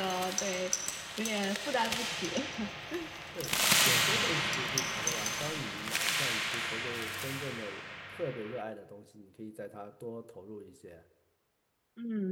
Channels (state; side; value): identical; both; correlation 1.00